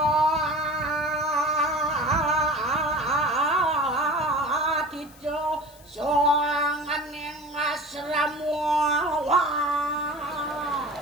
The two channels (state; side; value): noise; left; hiss, 25 dB below the sound